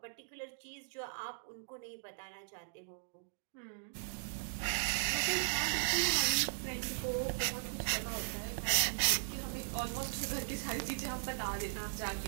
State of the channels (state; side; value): silent; left; digital silence